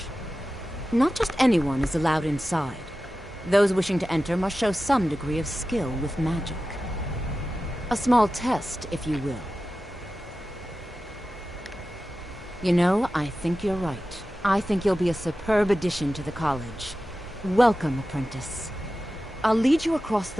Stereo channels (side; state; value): both; normal; correlation 0.94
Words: Not just anyone is allowed inside. Those wishing to enter must show some degree of skill with magic. A small test, if you will. You know, I think you're right. I think you'll be a superb addition to the college. Welcome, apprentice. I'll lead you across